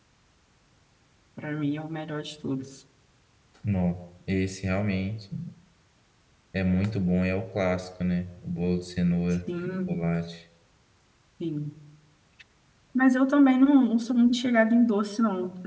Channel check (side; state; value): both; identical; correlation 1.00